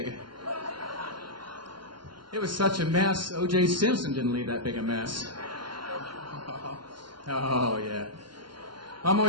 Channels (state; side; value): late; left; 0.72 ms